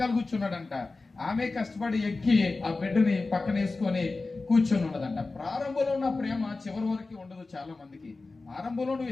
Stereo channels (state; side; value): quieter; right; 3.6 dB